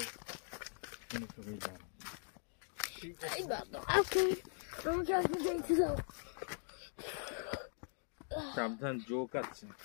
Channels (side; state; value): right; silent; 50 dB below the other